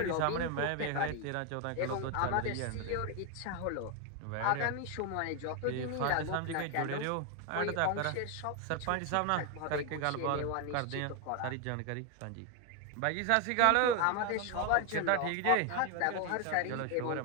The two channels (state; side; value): different; both; correlation 0.01